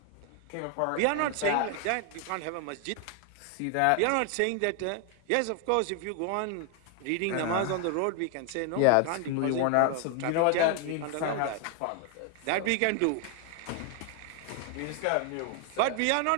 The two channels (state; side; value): different; both; correlation 0.00